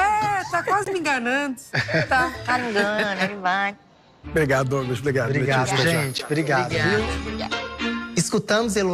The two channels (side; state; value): both; identical; correlation 1.00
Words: Tá quase me enganando. Tá me enganando, ele vai. Obrigado, Douglas. Obrigado, gente. Obrigado. Escutamos